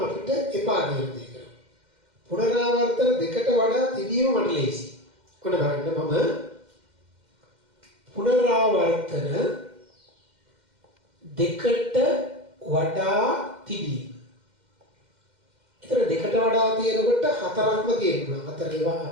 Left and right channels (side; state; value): left; late; 2.1 ms